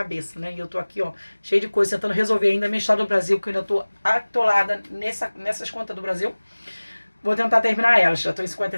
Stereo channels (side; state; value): both; inverted; correlation -1.00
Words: né? E eu tô aqui, ó, cheio de coisa, tentando resolver ainda a minha história do Brasil, que eu ainda tô atolada nessas contas do Brasil. Vou tentar terminar elas. Já tô em